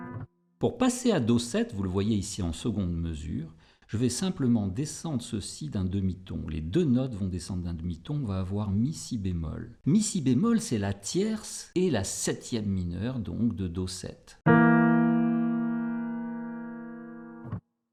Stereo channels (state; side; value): identical; both; correlation 1.00